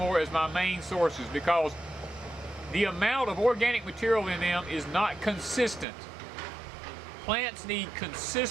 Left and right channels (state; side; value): drops out; left; at 5.9 s